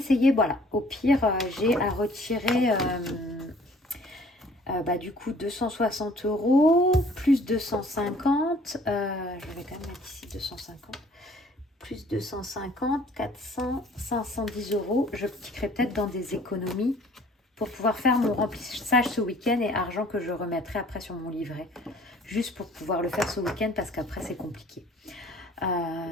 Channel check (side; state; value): both; normal; correlation 0.55